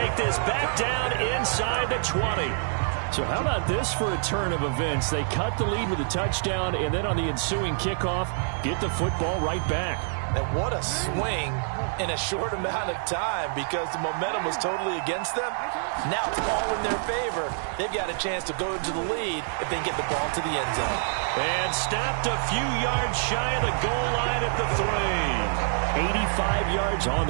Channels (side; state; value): left; silent; 61 dB below the other